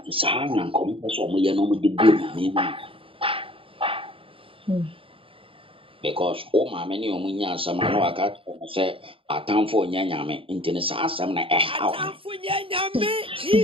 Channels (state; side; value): late; left; 0.26 ms